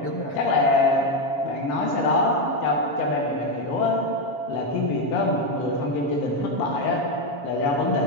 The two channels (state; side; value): late; right; 7.2 ms